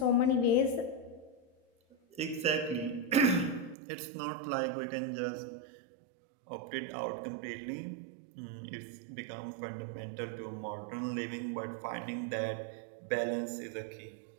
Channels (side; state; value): left; drops out; at 3.8 s